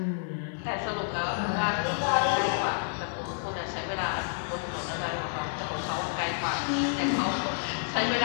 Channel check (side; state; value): right; silent; digital silence